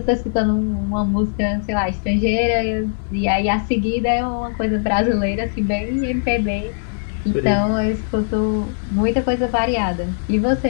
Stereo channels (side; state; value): right; silent; digital silence